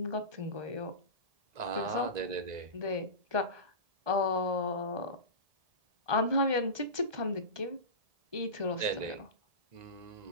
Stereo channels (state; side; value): late; left; 1.2 ms